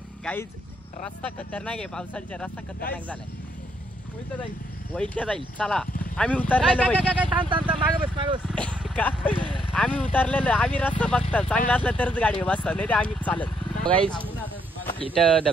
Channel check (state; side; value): normal; both; correlation 0.73